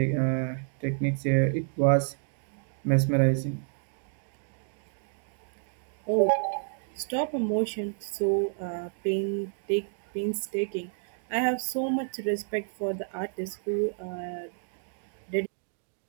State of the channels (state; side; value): silent; left; digital silence